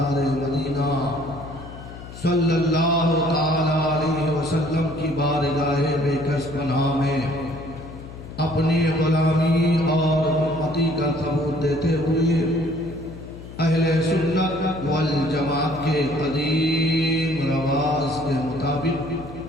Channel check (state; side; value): noise; left; hum, 14 dB below the sound